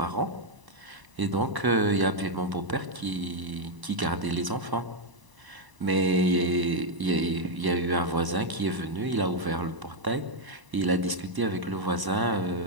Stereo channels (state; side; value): late; left; 1.0 ms